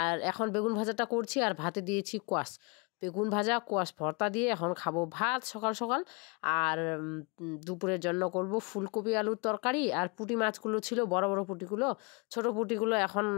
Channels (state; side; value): quieter; right; 31.5 dB